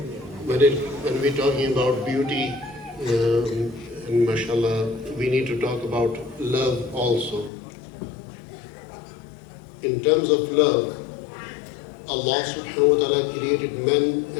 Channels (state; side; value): drops out; right; at 7.5 s